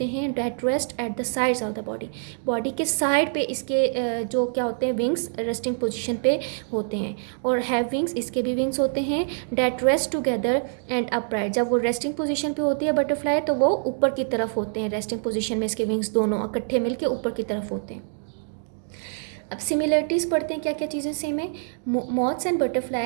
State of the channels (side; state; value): left; silent; digital silence